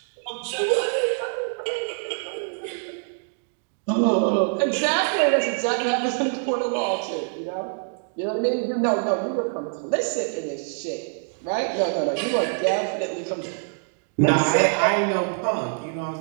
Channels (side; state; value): left; silent; 62 dB below the other